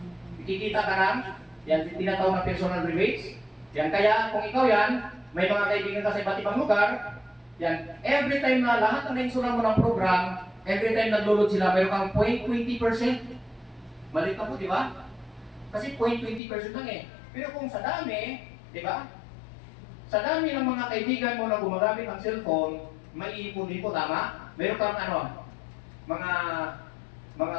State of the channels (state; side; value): drops out; right; at 16.4 s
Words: Kikita ka ng, yan, tinatawag na personal rebates. Yan, kaya kung ikaw yan, may mga kaibigan ka sa iba't ibang lugar, yan, every time na lahat ng nainsulan mo ng program, every time nag-load sila, mayroon kang 0.20%. Malit na po, di ba? Kasi 0.20% lang eh. Pero kung sa dami, di ba? Sa dami ng mga kaibigan mo na gumagamit ng cellphone, may ipon-ipon, tama? Meron kang mga